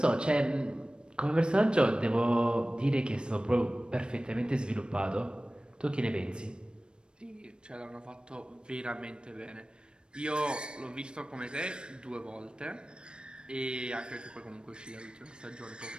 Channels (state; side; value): late; left; 0.053 ms